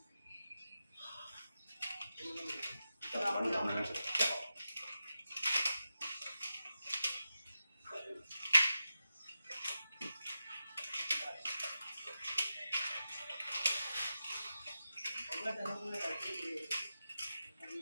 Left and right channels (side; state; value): both; inverted; correlation -0.91